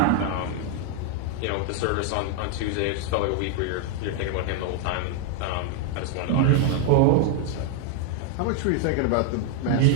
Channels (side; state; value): both; different; correlation 0.00